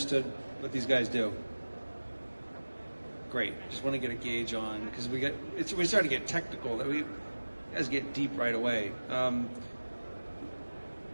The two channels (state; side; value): inverted; both; correlation -1.00